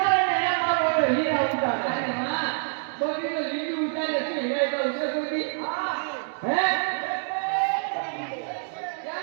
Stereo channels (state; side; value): silent; left; digital silence